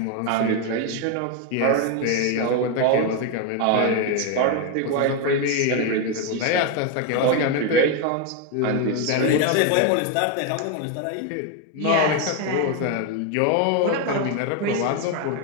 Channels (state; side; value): different; both; correlation 0.02